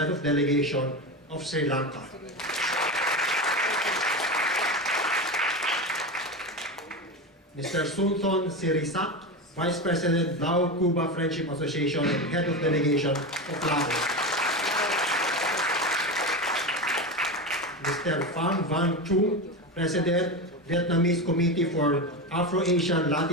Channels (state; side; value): normal; both; correlation 0.20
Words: of Delegation of Sri Lanka. Mr. Sunthon Sirisak, Vice President, Lao Cuba Friendship Association and Head of Delegation of Laos. Mr. Pham Van Chung, President, Vietnamese Committee for Afro-Asian